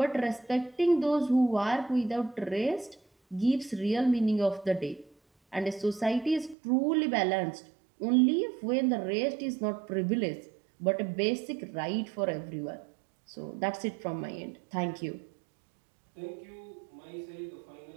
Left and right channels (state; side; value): drops out; left; at 6.6 s